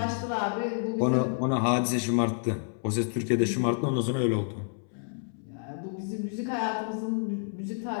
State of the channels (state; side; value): silent; right; 58 dB below the other